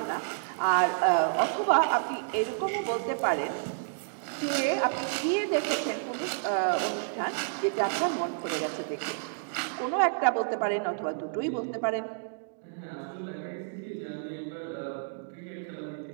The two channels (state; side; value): silent; left; digital silence